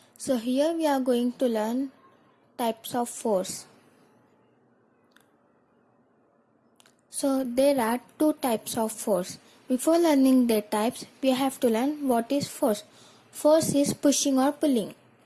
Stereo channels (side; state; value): both; identical; correlation 1.00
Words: So here we are going to learn types of force. So there are two types of force. Before learning their types, we have to learn what is force. Force is pushing or pulling.